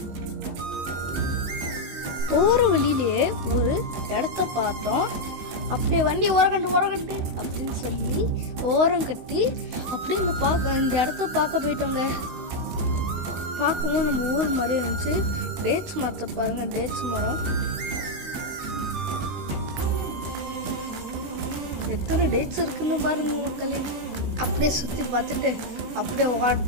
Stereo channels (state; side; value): late; left; 16 ms